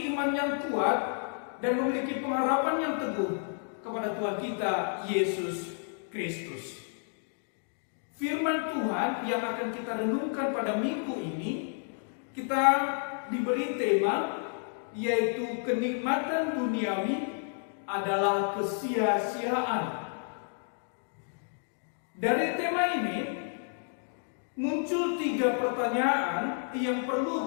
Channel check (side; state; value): right; silent; 57 dB below the other